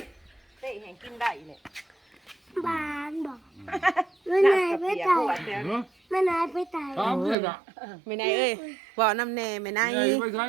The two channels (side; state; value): left; drops out; at 7.4 s